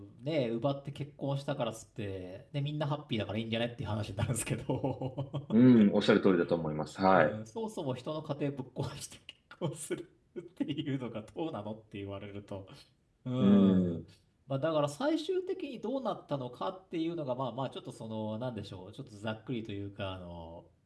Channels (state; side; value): identical; both; correlation 1.00